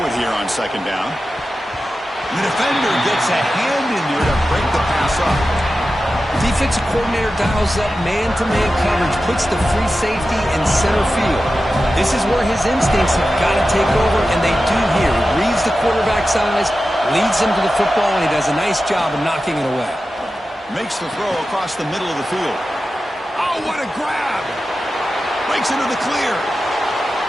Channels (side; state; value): both; normal; correlation 0.93